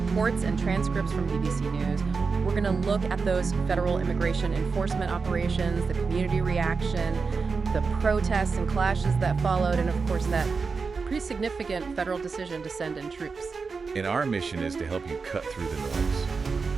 and transcripts from BBC News. We're going to look at those federal immigration enforcement operations, the community reaction, the protests and clashes that followed, and of course that pretty significant federal decision to send in troops. And our mission is to help you cut through the noise.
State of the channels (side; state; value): left; quieter; 4.8 dB